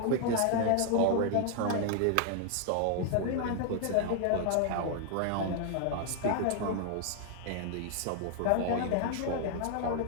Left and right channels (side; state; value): both; different; correlation 0.00